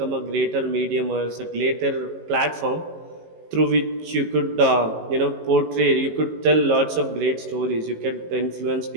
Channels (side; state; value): left; late; 18 ms